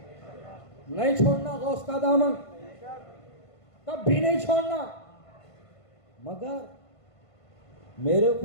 नहीं छोड़ना गौस का दामन, कभी नहीं छोड़ना। मगर मेरे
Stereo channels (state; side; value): late; right; 1.5 ms